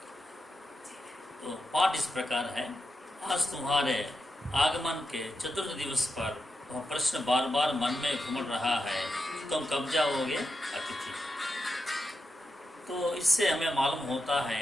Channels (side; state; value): both; normal; correlation 0.87